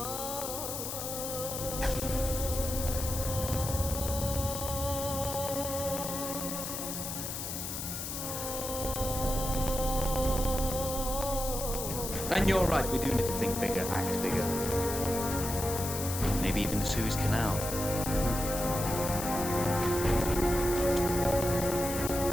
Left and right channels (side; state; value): left; noise; hiss, 5 dB below the sound